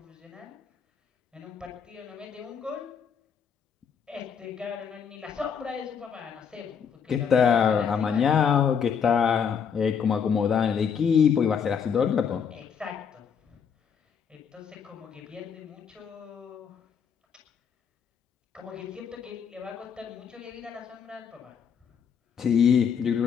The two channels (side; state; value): right; quieter; 7.0 dB